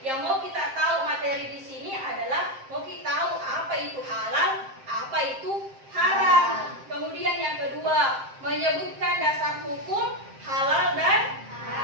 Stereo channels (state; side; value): late; left; 7.6 ms